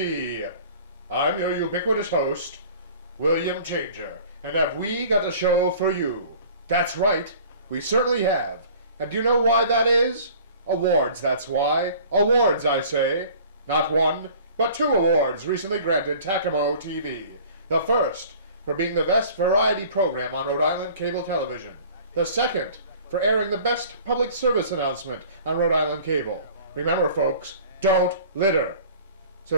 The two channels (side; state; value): both; inverted; correlation -0.47